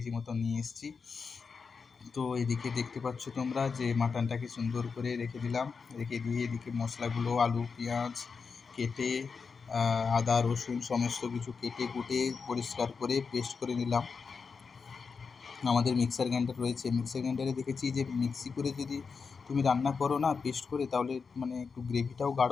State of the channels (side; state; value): right; quieter; 5.3 dB